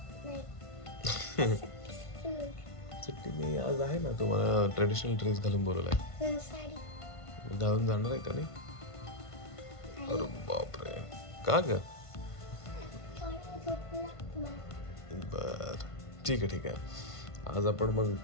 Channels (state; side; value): late; right; 1.5 ms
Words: सुट्टी नाही आज आहे ना. तुम्हाला ट्रेडिशनल ड्रेस घालून बोलवलाय. साडी घालून जाणार आहे का नाही? अरे बापरे, का ग? बर ठीक आहे ठीक आहे.